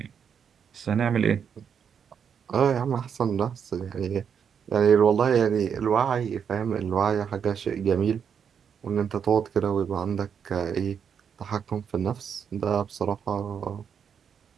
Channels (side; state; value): left; quieter; 7.4 dB